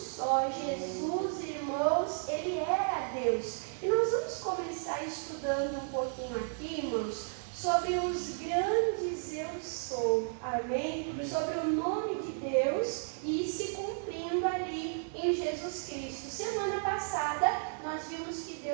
Jesus, irmãos, ele era Deus. E nós vamos começar estudando um pouquinho aqui, irmãos, sobre os grandes eu sou, amém? Sobre o nome de Deus e se cumprindo ali em Jesus Cristo. Semana passada nós vimos que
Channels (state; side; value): silent; left; digital silence